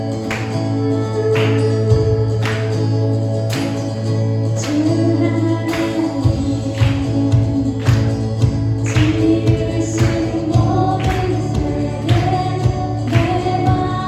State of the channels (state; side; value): identical; both; correlation 1.00